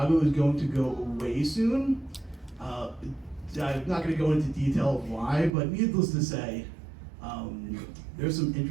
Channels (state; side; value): drops out; left; at 5.5 s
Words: is going to go away soon. I'm not going to go into detail of why, but needless to say, there's some